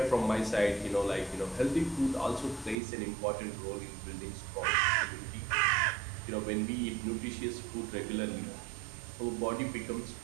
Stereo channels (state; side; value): drops out; left; at 2.8 s